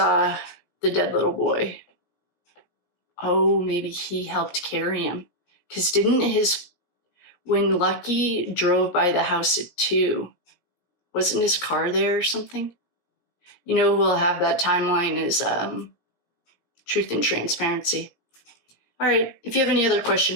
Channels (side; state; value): right; late; 17 ms